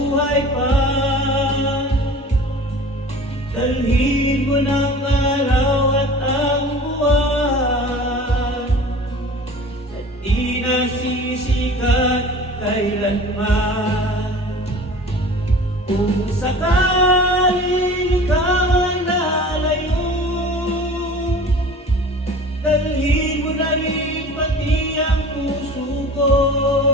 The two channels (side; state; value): both; normal; correlation 0.41